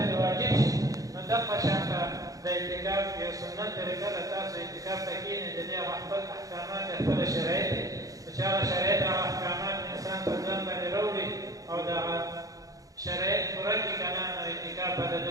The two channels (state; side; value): late; left; 0.17 ms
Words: واجب شي نو دغه شانته د اعتکاف یو سنت طریقه ده تاسو اعتکاف ته کښېنئ د دې هغه خپل احکامات خپله شرایط دي چې هغه شرایط هغه احکامات انسان په ځان باندې راوړي او دغه شرایط پوره کړي که نه نو اعتکاف به د